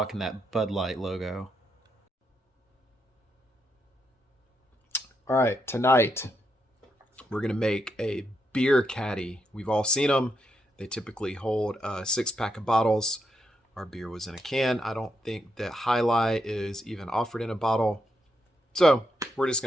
that Bud Light logo. All right, tonight we're going to make a beer caddy. We've all seen them. They typically hold a 6-pack of bottles. Our beer was in a can. I don't think that Hi-Lai is even offered in a bottle. So we're just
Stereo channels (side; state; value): both; normal; correlation 0.81